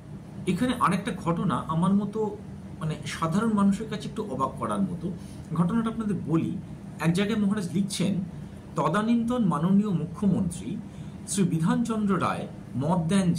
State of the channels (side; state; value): both; identical; correlation 1.00